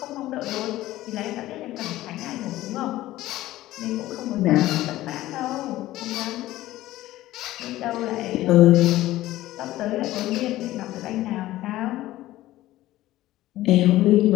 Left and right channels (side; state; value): right; quieter; 15.8 dB